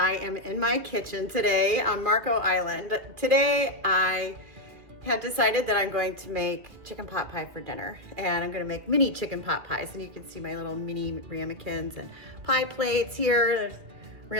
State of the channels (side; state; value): left; late; 2.4 ms